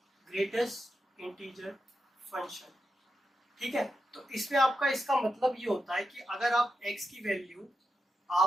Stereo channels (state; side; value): normal; both; correlation 0.88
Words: greatest integer function. ठीक है, तो इसमें आपका इसका मतलब ये होता है कि अगर आप x की वैल्यू